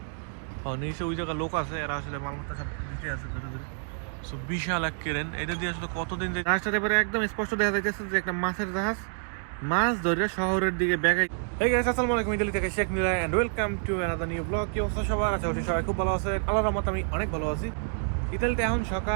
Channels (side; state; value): left; silent; 59 dB below the other